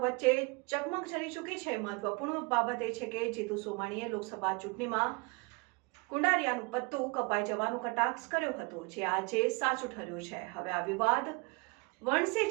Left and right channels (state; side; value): quieter; left; 29.3 dB